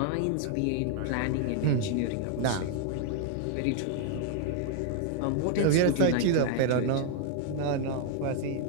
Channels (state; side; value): different; both; correlation 0.00